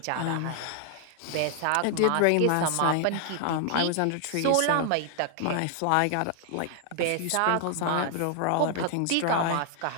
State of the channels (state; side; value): different; both; correlation 0.00